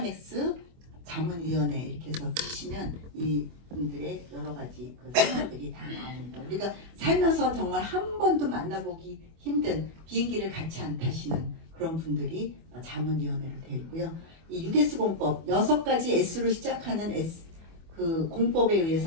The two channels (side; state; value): left; late; 24 ms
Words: 자문위원회 이렇게 해서 치시면 이 분들의 여러 가지 그 설명들이 다 나옵니다. 우리가 살면서 정말 한 번도 만나보기 힘든 비행기를 같이 안 타시는 그런 분들이 자문위원회로 되어 있고요. 이 6S 공법 6가지 S로 시작하는 그 공법에